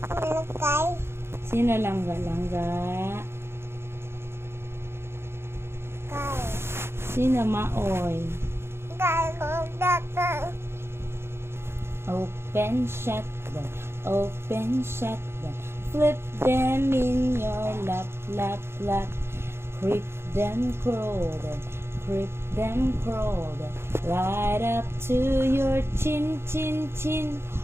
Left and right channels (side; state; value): left; late; 0.12 ms